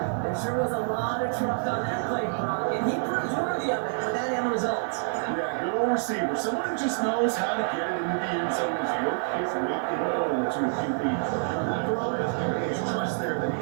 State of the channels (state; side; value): silent; left; digital silence